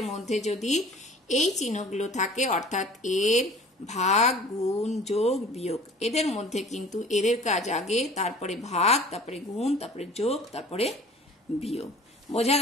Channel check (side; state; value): both; normal; correlation 0.46